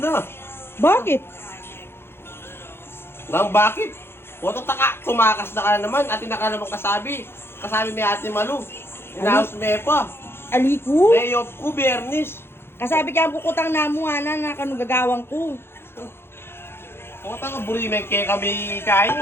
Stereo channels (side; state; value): right; late; 0.11 ms